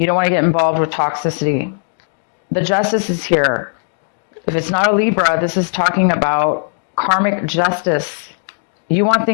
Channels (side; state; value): right; silent; digital silence